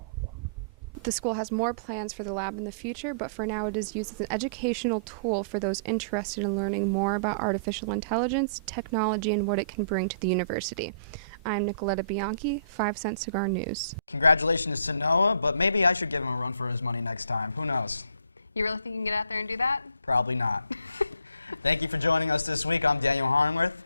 form. The school has more plans for the lab in the future, but for now it is used as an educational tool for those interested in learning more about artificial intelligence, technology, and what it can bring to the university. I'm Nicoletta Bianchi, 5 Cent Cigar News. Congratulations to Noah, but maybe I should give him a run for his money next time. Who knows? You really think you can get out there and do that? Probably not. Thank you for joining us this week. I'm Daniel Harnworth.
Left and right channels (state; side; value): inverted; both; correlation -0.58